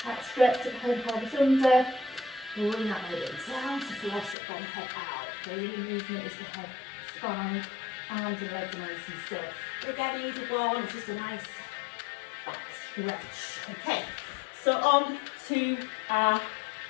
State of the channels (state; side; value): drops out; right; at 4.4 s